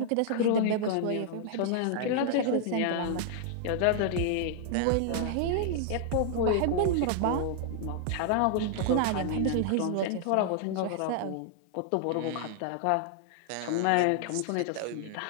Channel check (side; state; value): both; different; correlation -0.01